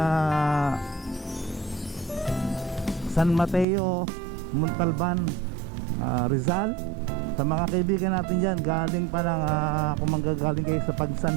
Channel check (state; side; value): drops out; left; at 3.7 s